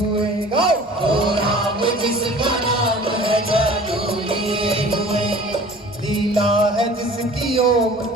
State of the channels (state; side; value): normal; both; correlation 0.45